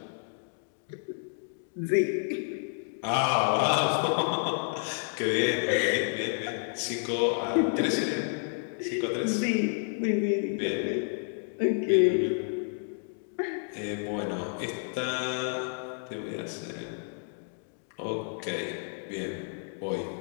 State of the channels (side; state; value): right; silent; 58 dB below the other